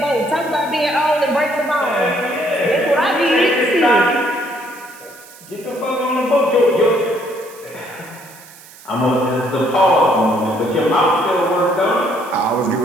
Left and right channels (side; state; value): right; noise; hiss, 21 dB below the sound